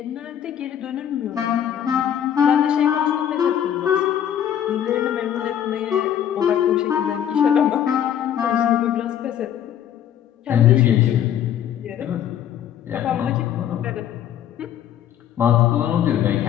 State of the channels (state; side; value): quieter; right; 10.0 dB